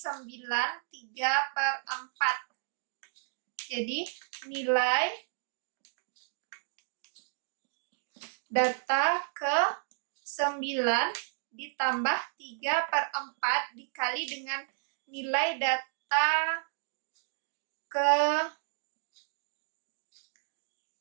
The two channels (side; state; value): left; silent; digital silence